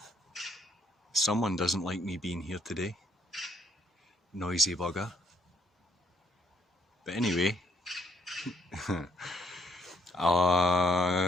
Someone doesn't like me being here today. Noisy bugger. But anyway,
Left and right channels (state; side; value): normal; both; correlation 0.69